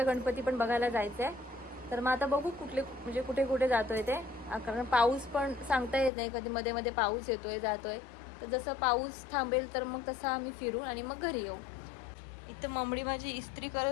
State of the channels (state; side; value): drops out; right; at 6.1 s